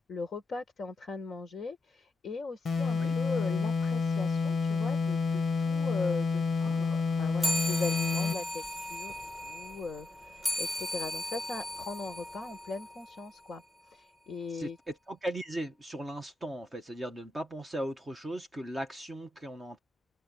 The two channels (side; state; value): right; quieter; 3.2 dB